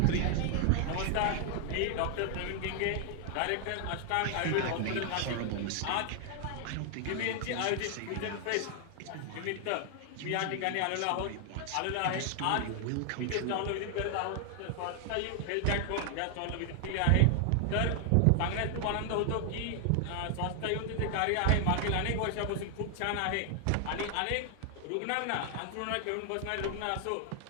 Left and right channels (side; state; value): both; different; correlation 0.00